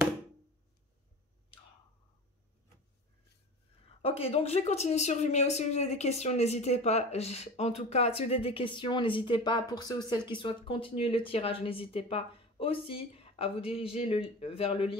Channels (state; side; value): normal; both; correlation 0.34